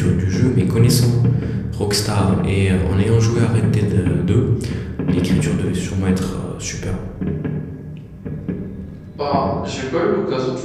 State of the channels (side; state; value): both; identical; correlation 1.00